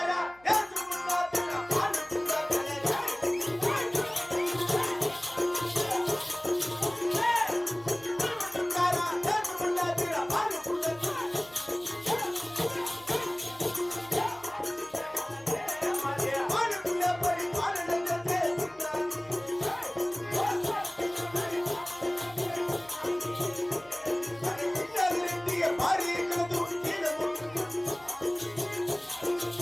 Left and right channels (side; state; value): left; noise; hum, 29 dB below the sound